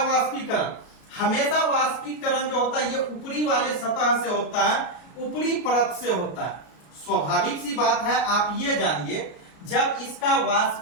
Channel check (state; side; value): late; right; 33 ms